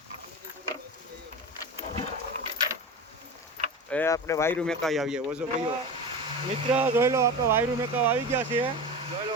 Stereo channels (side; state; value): both; normal; correlation 0.28